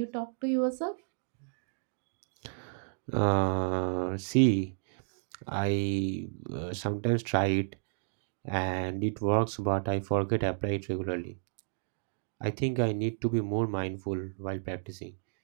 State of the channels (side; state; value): left; silent; digital silence